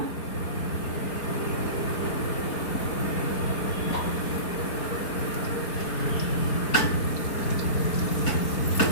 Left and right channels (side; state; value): right; late; 4.3 ms